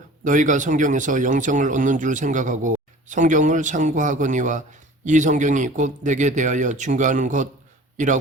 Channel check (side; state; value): both; normal; correlation 0.44